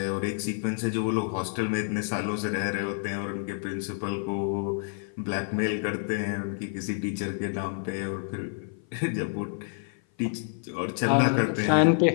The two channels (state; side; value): silent; right; 56 dB below the other